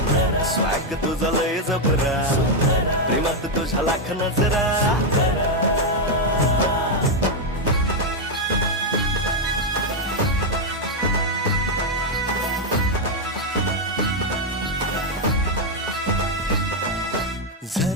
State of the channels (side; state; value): both; normal; correlation 0.02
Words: स्वॅग तुझा लय जबरा प्रेमात तुझा लाख नजरा